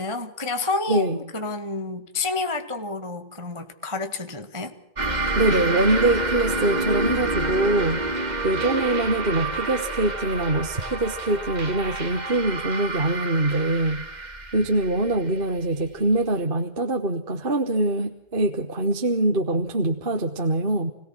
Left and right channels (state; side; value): late; left; 2.1 ms